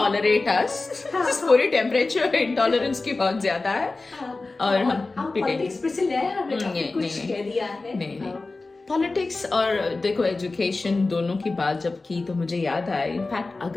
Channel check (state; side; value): quieter; right; 3.5 dB